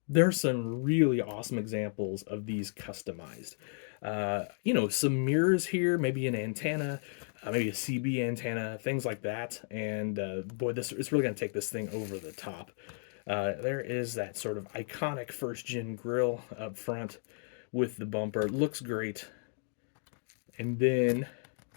there's some really awesome examples of these customized. Some mirrors here, maybe an antenna, maybe a CB antenna, things like that. And boy, this it's really going to take this thing over the top. There is that sort of iconic first gen grill up front with the bumper. It looks great. And then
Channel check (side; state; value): right; silent; 55 dB below the other